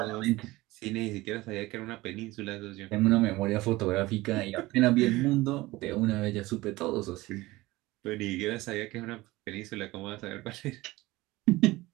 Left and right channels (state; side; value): quieter; left; 19.5 dB